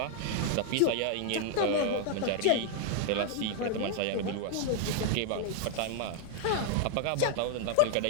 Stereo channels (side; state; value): both; different; correlation 0.00